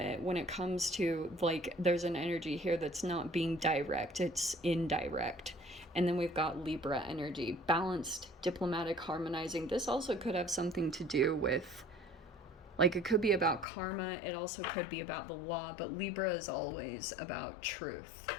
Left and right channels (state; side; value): drops out; right; at 13.7 s